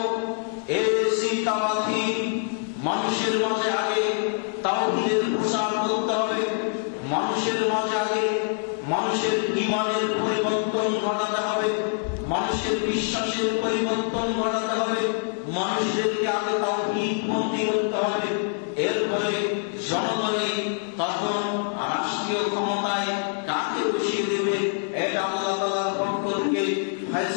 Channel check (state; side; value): silent; right; 62 dB below the other